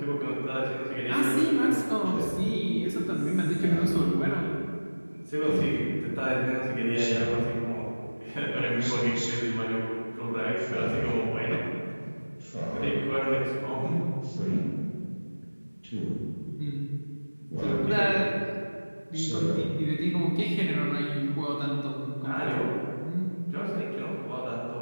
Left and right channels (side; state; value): both; inverted; correlation -1.00